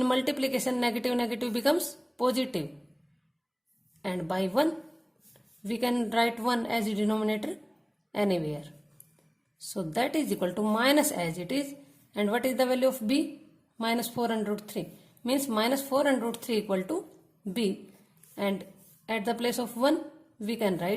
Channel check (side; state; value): both; identical; correlation 1.00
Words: multiplication negative becomes positive, and by 1 we can write 1 as a denominator anywhere. So that is equal to minus as it is, and what is the value of b? Minus 4 under root 3 means minus 4 under root 3 equal to b, and at the place of 1 we can